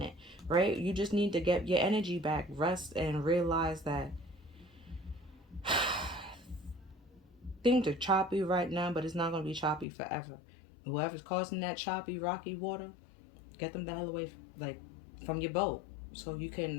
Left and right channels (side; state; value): right; drops out; at 9.9 s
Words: it, right? You just need to get your energy back, rest, and realize that things are choppy right now, but it's not going to be choppy forever. Whoever's causing that choppy, rocky water, get them the hell away, like, from your boat, so you